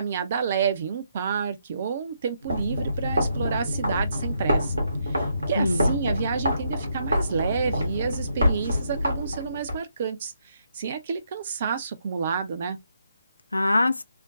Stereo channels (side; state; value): both; inverted; correlation -0.77